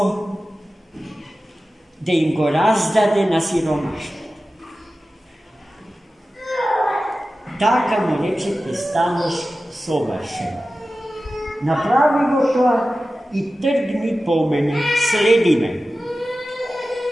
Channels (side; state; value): both; normal; correlation 0.95